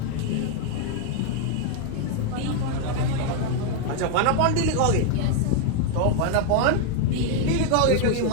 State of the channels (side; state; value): both; different; correlation 0.01